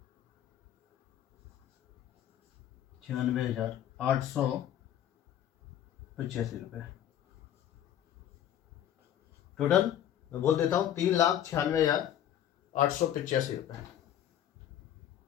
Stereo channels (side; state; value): right; quieter; 11.0 dB